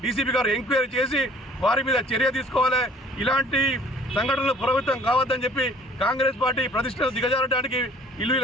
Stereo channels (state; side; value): normal; both; correlation 0.53